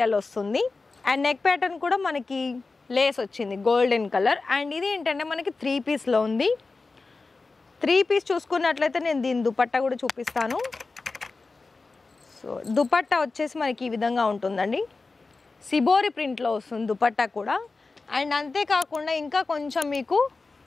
వస్తుంది. అండ్ నెక్ ప్యాటర్న్ కూడా మనకి లేస్ వచ్చింది గోల్డెన్ కలర్. అండ్ ఇది ఏంటంటే మనకి 3 పీస్లో ఉంది. 3 పీస్ చూసుకున్నట్లయితే నేను దీని దుపట్టా కూడా చూపిస్తాను. సో దుపట్టా వచ్చేసి మనకి ఈ విధంగా ఉంటుందండి, సిబోరి ప్రింట్లో వస్తుంది దుపట్టా కూడా. అండ్ అంతేకాకుండా ఇంకా కొంచెం మీకు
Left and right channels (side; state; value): right; quieter; 3.9 dB